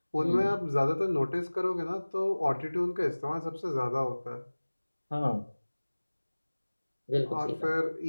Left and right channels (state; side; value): inverted; both; correlation -1.00